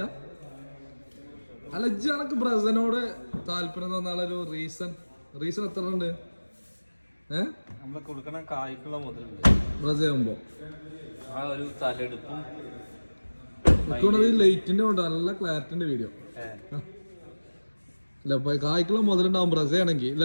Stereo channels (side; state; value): both; inverted; correlation -1.00